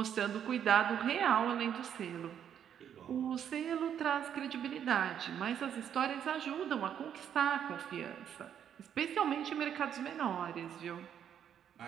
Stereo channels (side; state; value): left; quieter; 9.1 dB